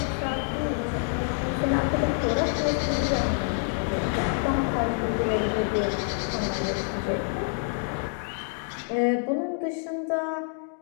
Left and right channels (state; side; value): silent; right; 60 dB below the other